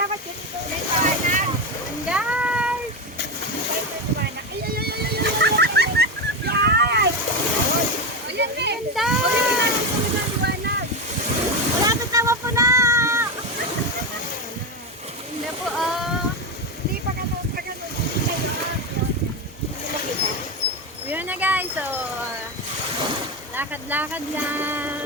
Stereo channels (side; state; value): both; normal; correlation 0.14